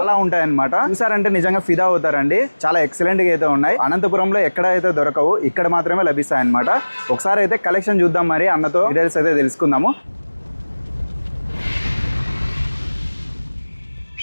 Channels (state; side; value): inverted; both; correlation -1.00